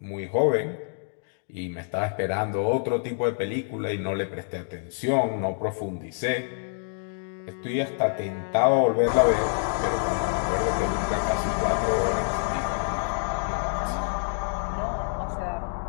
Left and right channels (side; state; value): right; silent; digital silence